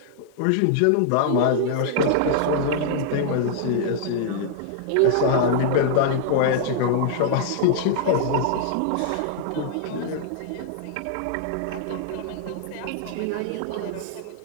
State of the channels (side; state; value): both; different; correlation -0.01